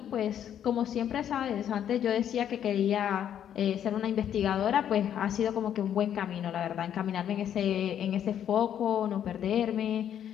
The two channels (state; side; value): quieter; right; 9.7 dB